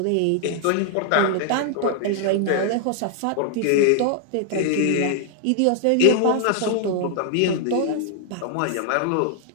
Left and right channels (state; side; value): different; both; correlation 0.00